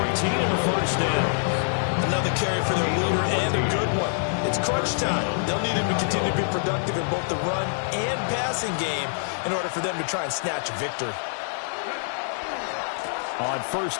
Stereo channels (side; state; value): right; silent; digital silence